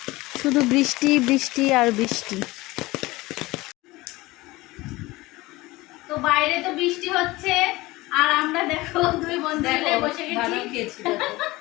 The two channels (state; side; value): quieter; right; 20.2 dB